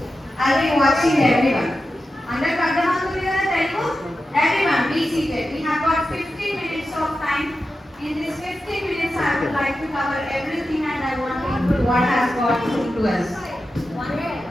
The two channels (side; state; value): both; normal; correlation 0.91